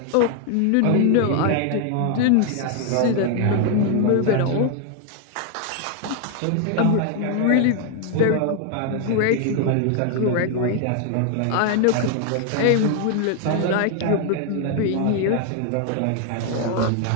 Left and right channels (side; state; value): both; different; correlation 0.00